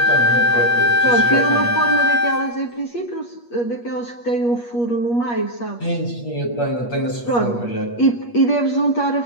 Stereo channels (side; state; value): right; late; 8.4 ms